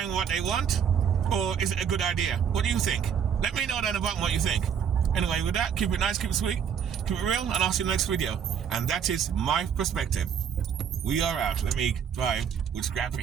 what they want? Or is it a good idea? What do you think? Let me know down the bottom what you think. Anyway, with that, keep it nice, keep it sweet, keep it real, and I'll see you in the next video. And that is my perspective. We are out. Let me drive with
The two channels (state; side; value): quieter; left; 7.8 dB